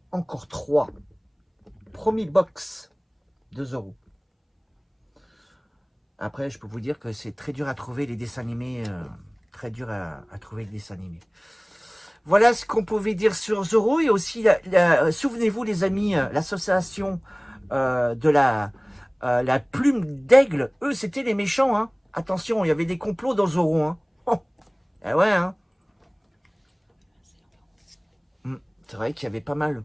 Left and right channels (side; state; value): both; identical; correlation 1.00